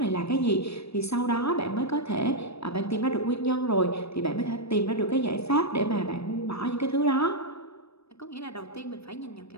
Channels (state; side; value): late; right; 0.78 ms